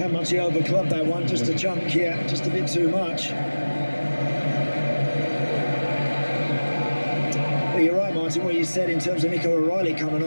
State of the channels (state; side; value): inverted; both; correlation -1.00